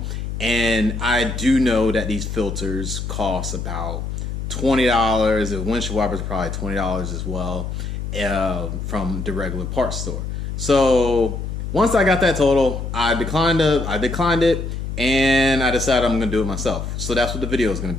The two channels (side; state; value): left; noise; hum, 5 dB below the sound